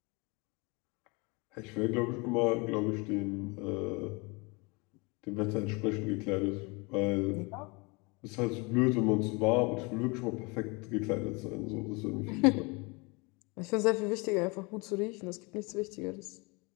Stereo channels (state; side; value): quieter; right; 28.4 dB